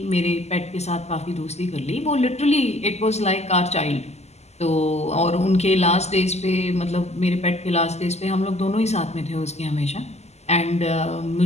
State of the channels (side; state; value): right; late; 0.32 ms